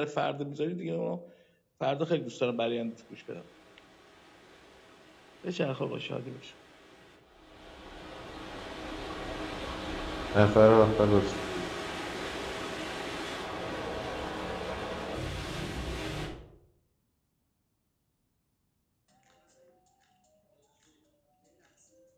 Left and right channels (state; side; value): identical; both; correlation 1.00